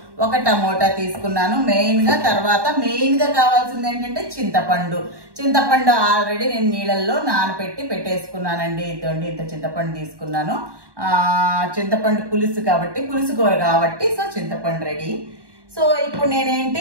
1 టమోటా తీసుకున్నాను తర్వాత మెయిన్గా కావాల్సింది ఏంటంటే చింతపండు ఆల్రెడీ నేను నీళ్ళల్లో నానబెట్టి పెట్టేసుకున్నానండి. ఇదండి, ఇంత చింతపండు తీసుకున్నాను. చింతపండు పులుసు కాబట్టి, పులుసు కూర కాబట్టి సో చింతపండు రెడీ. సో ఇప్పుడు నేనేంటి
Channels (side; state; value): left; late; 1.1 ms